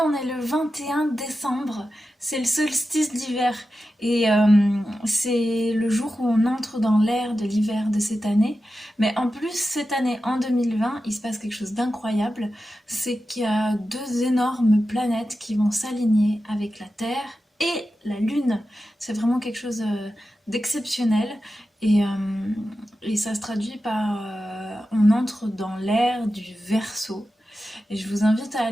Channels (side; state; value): both; normal; correlation 0.92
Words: on est le 21 décembre, c'est le solstice d'hiver et c'est le jour où on entre dans l'ère de l'hiver de cette année. Mais en plus, cette année, en 2020, il se passe quelque chose d'incroyable, c'est qu'il y a deux énormes planètes qui vont s'aligner avec la Terre et la Lune. C'est vraiment quelque chose d'exceptionnel et, euh, et ça se traduit par on entre dans l'ère du Verseau. Et je vous invite à